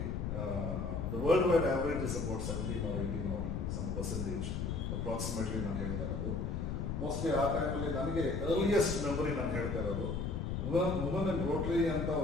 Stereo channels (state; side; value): noise; left; rumble, 2 dB below the sound